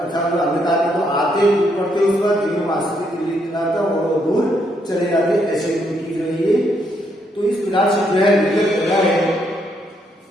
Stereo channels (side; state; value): both; normal; correlation 0.74